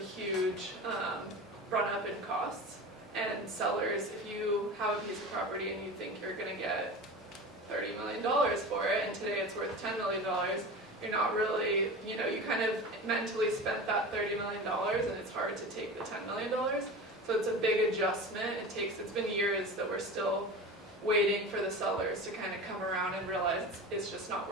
run up in costs. And sellers, if you have a piece of property and you think you're going to get $30 million for it, and today it's worth $10 million, you're not really, you kind of mentally spent that $30 million, and it's hard to take the $10 million. So it's a big adjustment. It's been years that we're still waiting for the sellers to kind of come around and realize it's just not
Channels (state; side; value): normal; both; correlation 0.31